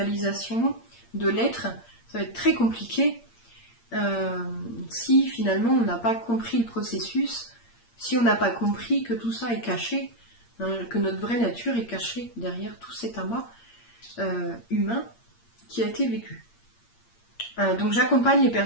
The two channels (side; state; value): right; late; 8.6 ms